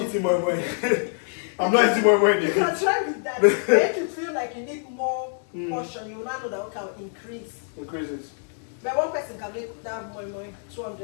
more money. I'm not eating more money. You can try with that. If you feel like you need more portion, you will not know that we can increase. Increase it. But one person can make that more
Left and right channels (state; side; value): silent; right; 62 dB below the other